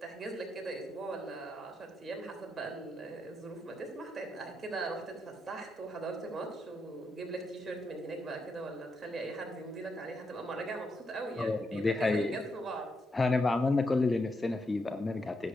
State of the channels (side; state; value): both; normal; correlation 0.81